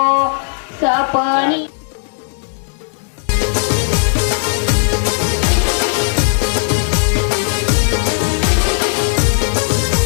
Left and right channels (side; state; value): right; silent; 63 dB below the other